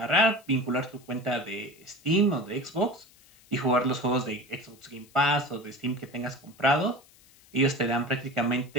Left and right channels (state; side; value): noise; left; hiss, 27 dB below the sound